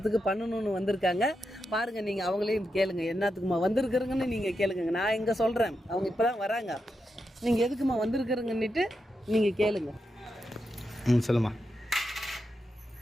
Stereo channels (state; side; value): normal; both; correlation 0.86